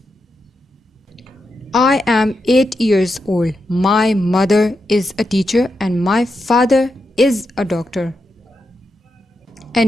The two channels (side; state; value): both; normal; correlation 0.86